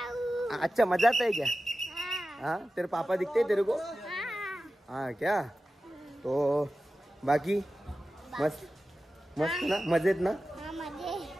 अच्छा मजा आता है क्या? हाँ, तेरे पापा दिखते हैं तेरे को? हाँ क्या? तो बाकी मस्त मस्त ना, मजेत ना?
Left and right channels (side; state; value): both; normal; correlation 0.94